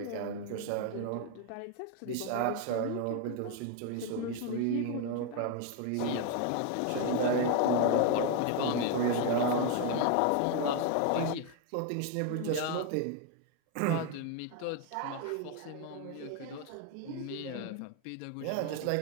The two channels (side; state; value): both; different; correlation 0.01